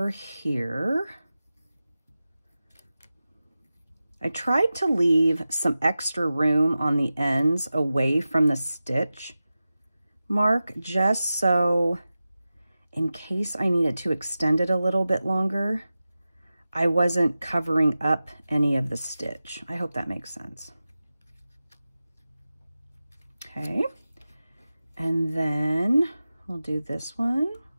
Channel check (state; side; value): inverted; both; correlation -0.94